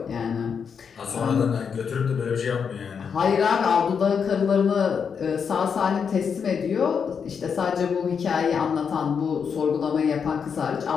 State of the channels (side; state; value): right; quieter; 6.6 dB